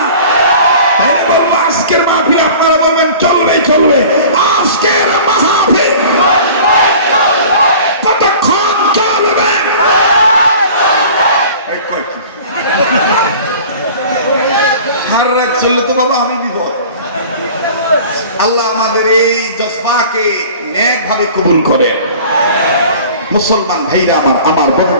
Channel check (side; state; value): both; inverted; correlation -0.43